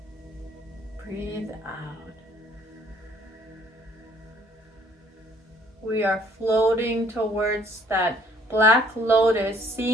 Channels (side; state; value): both; normal; correlation 0.60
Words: Breathe out. We are floating towards that black lotus,